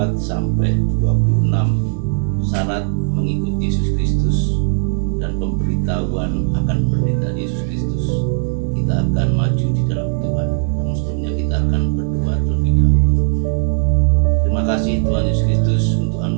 sampai 26, syarat mengikuti Yesus Kristus dan pemberitahuan akan penderitaan Yesus Kristus. Kita akan maju di dalam Tuhan. Namun sebelumnya kita akan berdoa terlebih dahulu. Terima kasih Tuhan Yesus Kristus untuk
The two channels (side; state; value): left; silent; 64 dB below the other